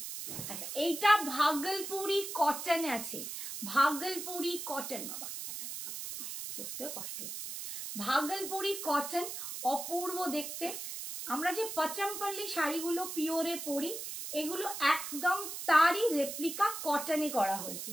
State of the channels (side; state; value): right; noise; hiss, 7 dB below the sound